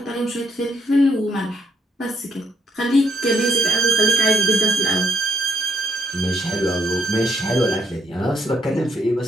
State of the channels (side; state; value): both; normal; correlation 0.73